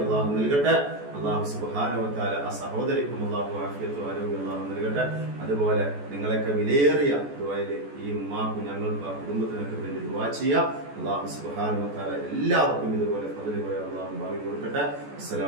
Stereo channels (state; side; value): late; left; 14 ms